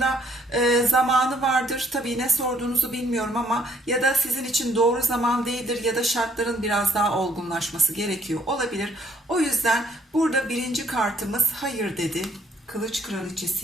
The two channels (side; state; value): both; normal; correlation 0.65